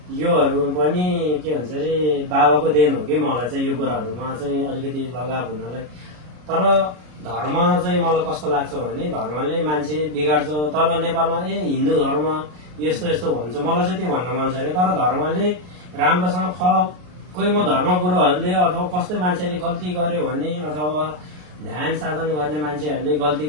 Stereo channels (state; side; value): late; left; 33 ms